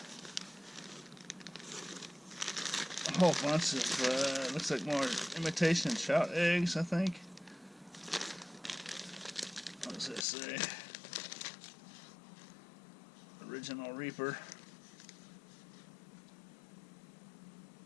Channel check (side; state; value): right; drops out; at 10.2 s